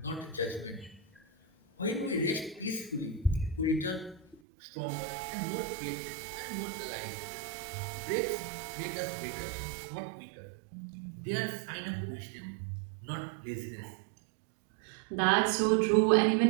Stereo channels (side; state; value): left; drops out; at 4.4 s